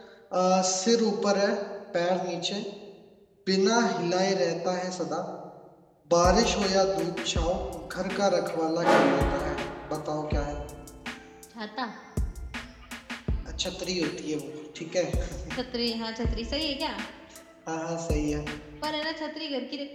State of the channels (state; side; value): identical; both; correlation 1.00